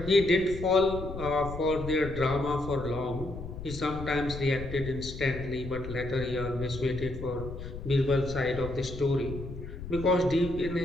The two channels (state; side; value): noise; left; rumble, 10 dB below the sound